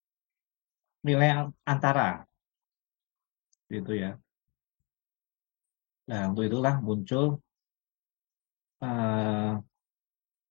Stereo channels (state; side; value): quieter; right; 31.1 dB